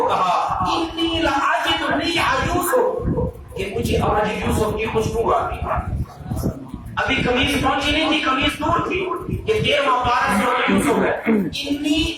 کہا انی لاجد ریح یوسف, کہ مجھے آج یوسف کی خوشبو آتی ہے. ابھی قمیص پہنچی نہیں تھی, قمیص دور تھی کہ 13واں پارہ سے یوسف ہے. انی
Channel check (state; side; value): identical; both; correlation 1.00